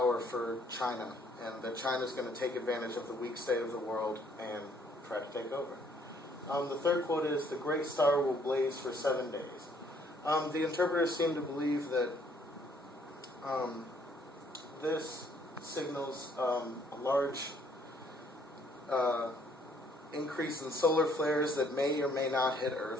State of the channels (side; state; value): both; normal; correlation 0.64